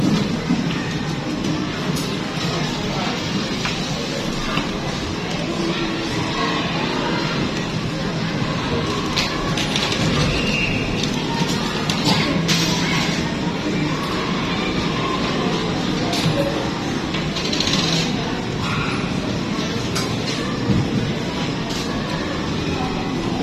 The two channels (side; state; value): both; identical; correlation 1.00